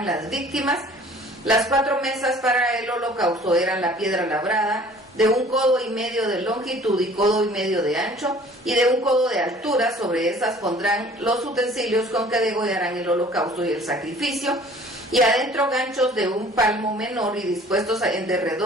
las víctimas. Las 4 mesas para el holocausto eran la piedra labrada, de 1,5 codos de longitud y 1,5 codos de ancho, y de 1 codo de altura. Sobre esas pondrán los utensilios con que degollarán el holocausto y el sacrificio, y adentro ganchos de 1 palmo menor, y dispuestos en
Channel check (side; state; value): both; normal; correlation 0.51